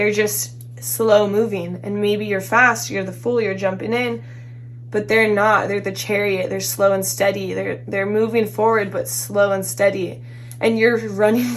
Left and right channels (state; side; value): identical; both; correlation 1.00